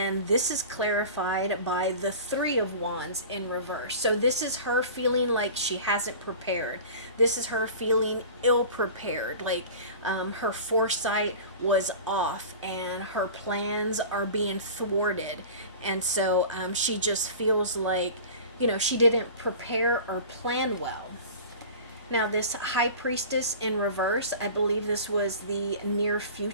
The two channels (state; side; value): inverted; both; correlation -0.38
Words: this is clarified by the Three of Wands in reverse. So this is her feeling like she hasn't prepared. This is her feeling ill prepared, like her foresight was off and her plans are being thwarted. And so she just feels like, she didn't prepare or plan well. Now, this High Priestess in reverse, I believe this was the near